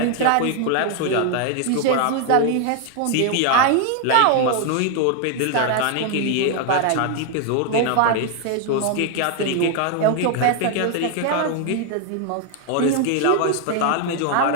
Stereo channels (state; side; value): different; both; correlation 0.00